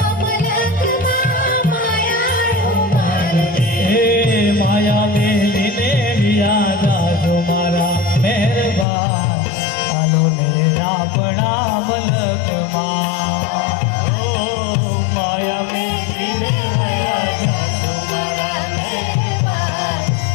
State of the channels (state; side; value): drops out; right; at 8.8 s